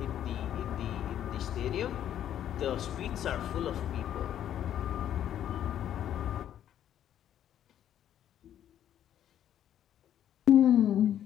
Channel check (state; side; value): quieter; right; 10.7 dB